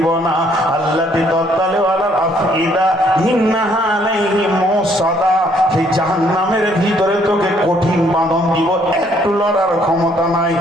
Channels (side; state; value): both; normal; correlation 0.66